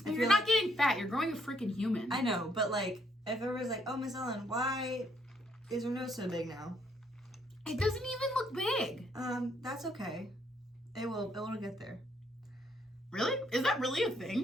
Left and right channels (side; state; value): both; normal; correlation 0.71